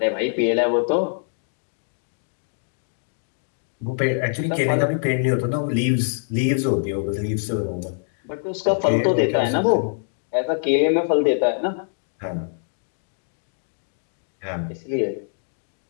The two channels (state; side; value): silent; right; digital silence